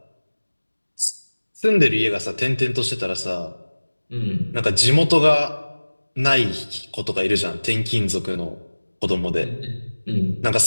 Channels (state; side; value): inverted; both; correlation -1.00